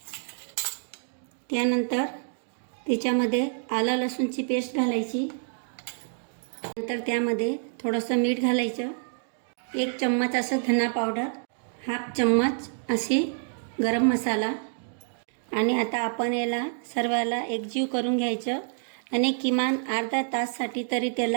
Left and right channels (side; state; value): left; silent; 60 dB below the other